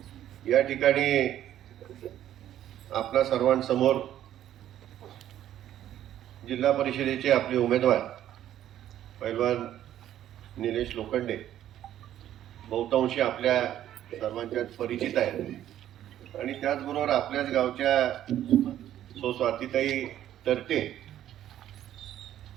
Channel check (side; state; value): left; quieter; 11.8 dB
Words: या ठिकाणी आपल्या सर्वांसमोर जिल्हा परिषदेचे आपले उमेदवार पैलवान निलेश लोखंडे बहुतांशी आपल्या सर्वांच्यात परिचित आहेत आणि त्याचबरोबर आपल्याच गावच्या स्वातीताई तरते